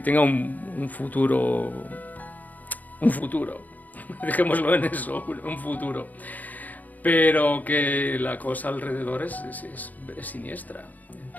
un futuro, dejémoslo en eso, un futuro, pero que la cosa alrededor es siniestra.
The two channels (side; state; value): right; late; 0.080 ms